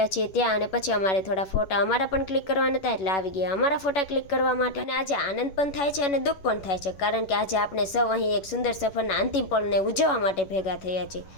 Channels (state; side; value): late; right; 11 ms